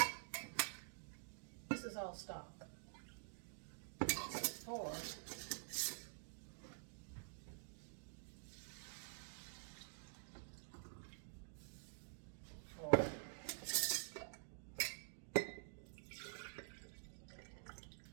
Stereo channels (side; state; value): left; silent; digital silence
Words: this is all stock. 4.